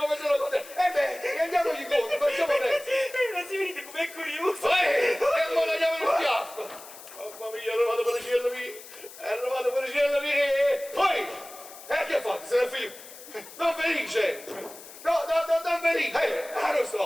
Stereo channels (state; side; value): noise; left; hiss, 17 dB below the sound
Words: se lo conosce. Beh, andiamogli incontro, facciamo presto. Ma si vedete com'è curioso! E ora andiamo in schiaffo. Mamma mia, è arrivato per il cielo mio. Poi, che fate? Se ne figlio? Don Felice! No, Don Felice! Non